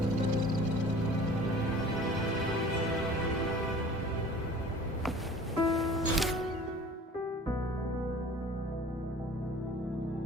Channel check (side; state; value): both; normal; correlation 0.46